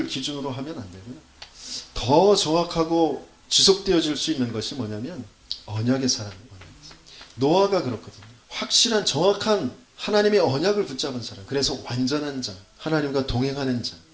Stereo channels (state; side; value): identical; both; correlation 1.00